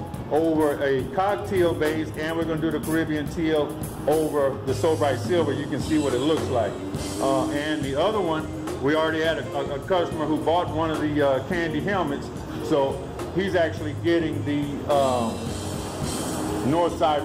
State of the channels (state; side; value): identical; both; correlation 1.00